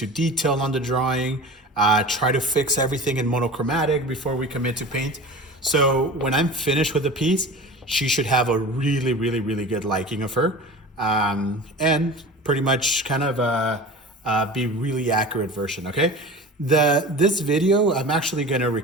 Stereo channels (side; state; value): both; normal; correlation 0.35